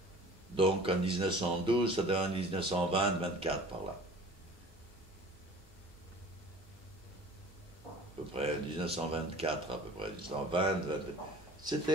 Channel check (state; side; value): noise; left; hum, 26 dB below the sound